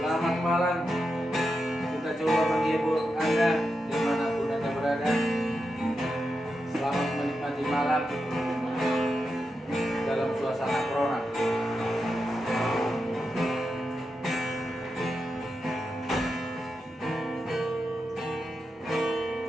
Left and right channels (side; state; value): both; normal; correlation 0.88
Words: malam. Kita coba menghibur Anda dimanapun Anda berada. Selamat menikmati malam dalam suasana corona.